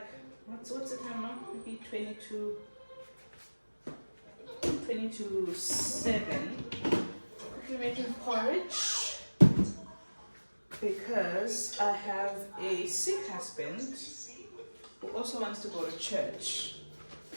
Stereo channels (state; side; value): inverted; both; correlation -1.00